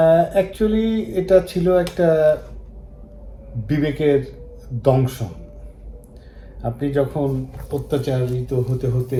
অ্যাকচুয়ালি এটা ছিল একটা বিবেকের দংশন। আপনি যখন অত্যাচারিত হতে হতে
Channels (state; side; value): identical; both; correlation 1.00